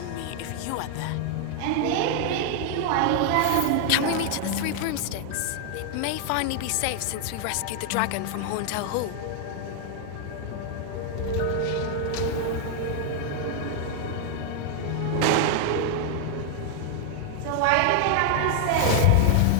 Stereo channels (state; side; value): different; both; correlation 0.00